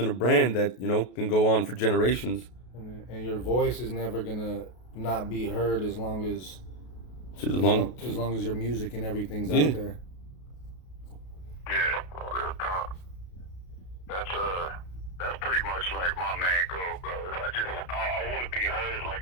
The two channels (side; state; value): right; late; 33 ms